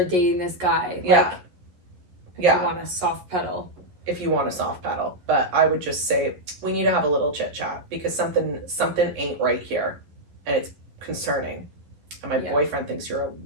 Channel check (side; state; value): left; late; 11 ms